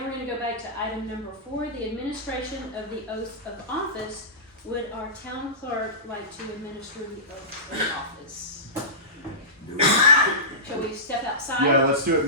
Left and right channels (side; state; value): both; normal; correlation -0.19